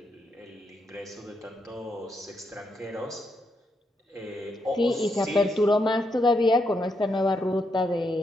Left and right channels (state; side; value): normal; both; correlation 0.80